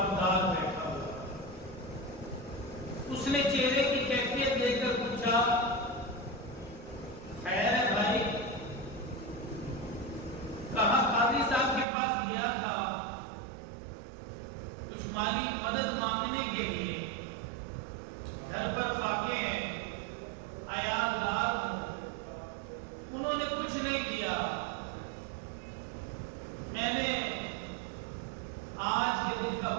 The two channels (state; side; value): drops out; left; at 11.9 s